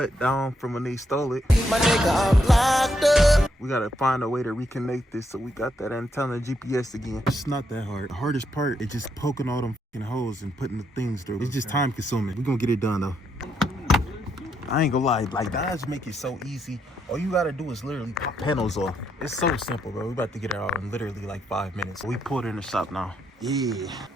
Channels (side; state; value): both; normal; correlation 0.77